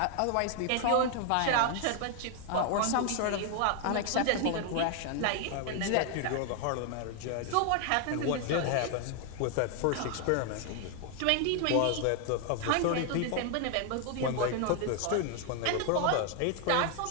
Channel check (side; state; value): both; different; correlation 0.00